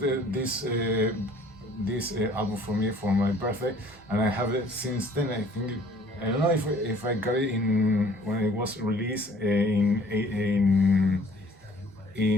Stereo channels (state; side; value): normal; both; correlation 0.55